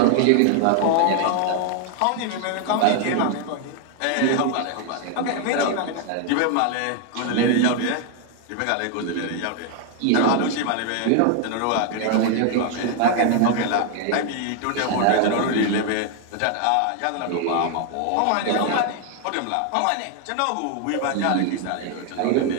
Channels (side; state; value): both; different; correlation 0.00